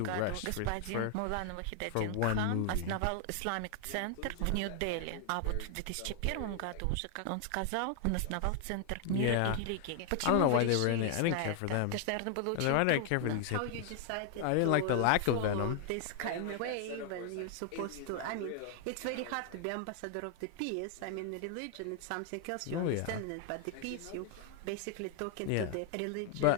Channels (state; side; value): different; both; correlation 0.00